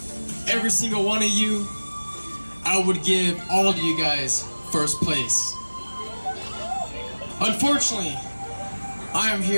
every single one of you, I would give all of you guys first place. Unfortunately, I am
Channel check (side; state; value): both; inverted; correlation -1.00